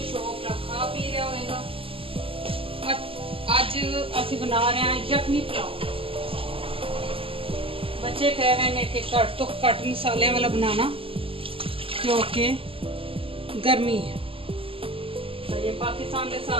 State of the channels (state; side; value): late; left; 0.26 ms